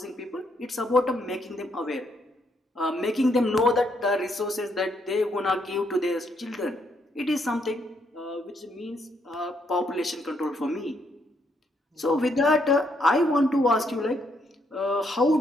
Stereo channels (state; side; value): normal; both; correlation 0.74